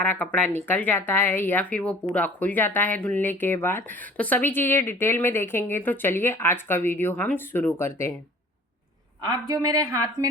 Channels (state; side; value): normal; both; correlation 0.48